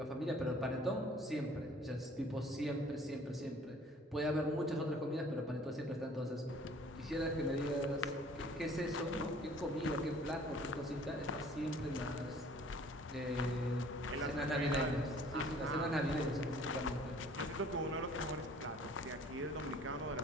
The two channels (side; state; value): both; normal; correlation 0.53